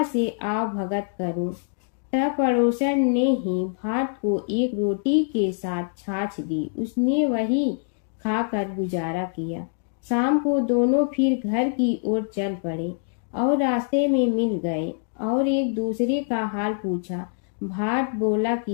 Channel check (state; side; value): silent; right; digital silence